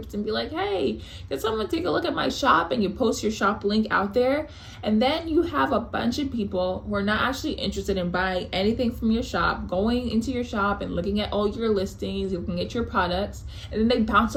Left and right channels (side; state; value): both; identical; correlation 1.00